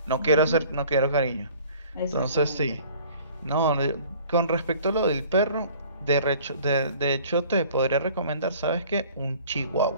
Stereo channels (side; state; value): both; inverted; correlation -0.50